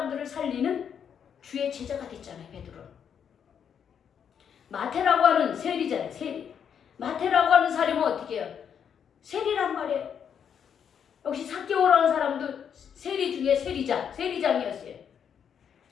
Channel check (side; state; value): right; quieter; 7.9 dB